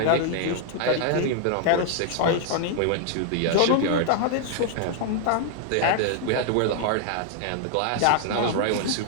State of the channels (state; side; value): different; both; correlation 0.00